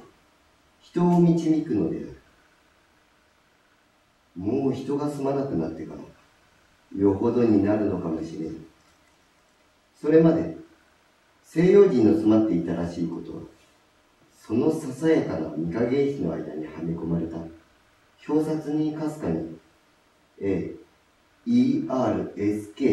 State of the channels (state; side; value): identical; both; correlation 1.00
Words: 人を導くのである。もう人が住まなくなってからよほどになるのかもしれん。それまで西洋人の住まっていたらしいことは、そのささやかな御影石の間にはめ込まれた表札にかすかに AERSKINE